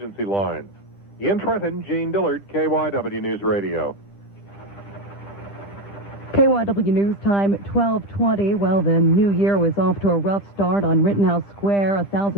lines. In Trenton, Gene Dillard, KYW News Radio. KYW News Time, 12:20. Well, the new year was off to a rough start on Rittenhouse Square.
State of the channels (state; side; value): late; right; 10 ms